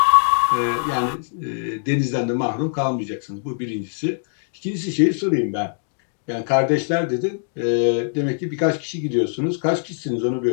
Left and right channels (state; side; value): silent; right; digital silence